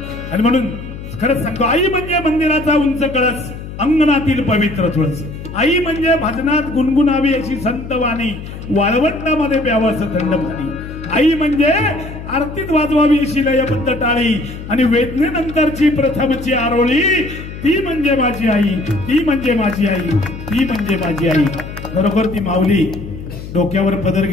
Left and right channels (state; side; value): noise; left; hum, 11 dB below the sound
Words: आणि म्हणून खरंच सांगतो, आई म्हणजे मंदिराचा उंच कळस, अंगणातील पवित्र तुळस. आई म्हणजे भजनात गुणगुणावी अशी संत वाणी, वाळवंटामध्ये प्यावं असं थंड पाणी. आई म्हणजे आरतीत वाजवावी अशी लयबद्ध टाळी आणि वेदनेनंतरची प्रथमची आरोळी. ती म्हणजे माझी आई, ती म्हणजे माझी आई, ती म्हणजे माझी आई. खरोखर ती माऊली डोक्यावर पदर